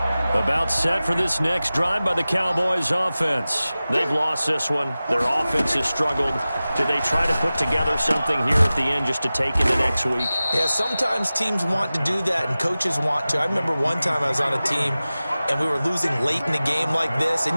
About set for this next drive by the Cowboys offense. They've lost this one. Their offense has struggled. Do they try to put together something here at the end just to take into next week? Yeah, sometimes teams want to do that and coaches want to. I remember one time I was on a team and we were losing late in the game like this,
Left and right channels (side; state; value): both; inverted; correlation -0.96